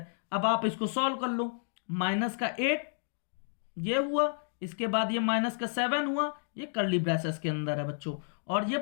अब आप इसको सॉल्व कर लो, माइनस का 8 ये हुआ, इसके बाद ये माइनस का 7 हुआ, ये कर्ली ब्रेसेस के अंदर है बच्चों, और ये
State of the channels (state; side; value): silent; right; digital silence